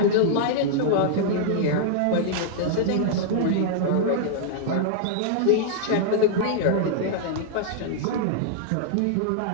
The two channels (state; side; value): different; both; correlation -0.01